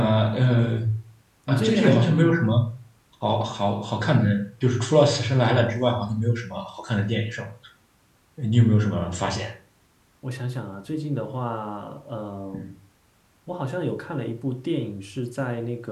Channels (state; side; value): identical; both; correlation 1.00